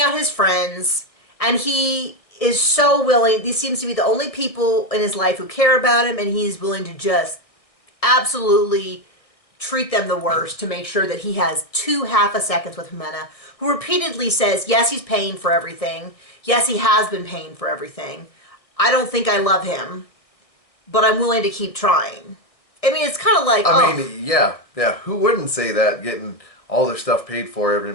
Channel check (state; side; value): late; right; 1.6 ms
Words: out his friends, and he is so willing. These seems to be the only people in his life who care about him, and he's willing to just absolutely treat them the worst to make sure that he has 2 half a seconds with Jimena, who repeatedly says, yes, he's paying for everything. Yes, he has been paying for everything. I don't think I love him, but I'm willing to keep trying. I mean, it's kind of like, I mean, yeah. Who wouldn't say that, getting all their stuff paid for every